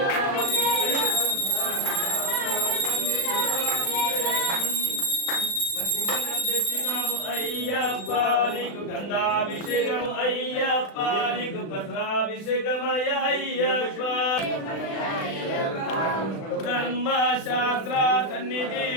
తెచ్చినాము అయ్యప్ప నీకు గంధాభిషేకము అయ్యప్ప నీకు పత్రాభిషేకమయ అయ్యప్ప ధర్మశాస్త్ర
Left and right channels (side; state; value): right; late; 36 ms